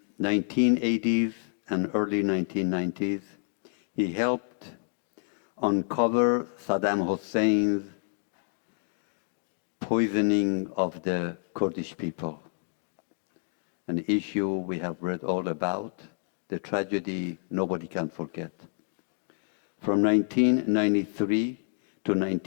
1980s and early 1990s, he helped uncover Saddam Hussein's poisoning of the Kurdish people, an issue we have read all about, the tragedy nobody can forget. From 1993 to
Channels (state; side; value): silent; right; digital silence